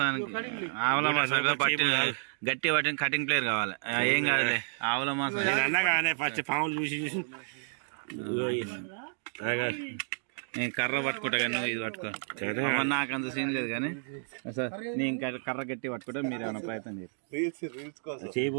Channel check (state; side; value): silent; left; 57 dB below the other